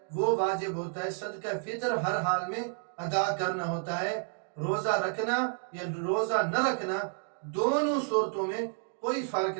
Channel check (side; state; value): left; silent; 57 dB below the other